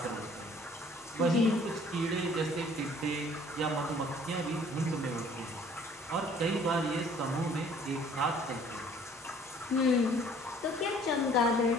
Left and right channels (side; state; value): both; normal; correlation 0.55